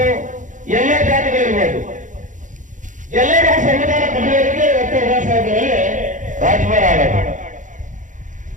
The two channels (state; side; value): late; left; 0.37 ms